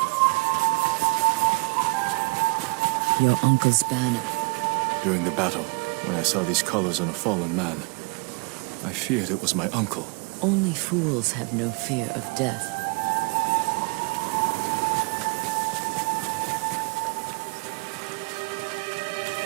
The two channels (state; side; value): quieter; left; 32.1 dB